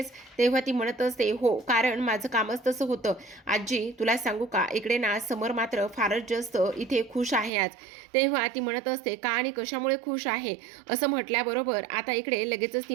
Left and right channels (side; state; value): left; drops out; at 7.5 s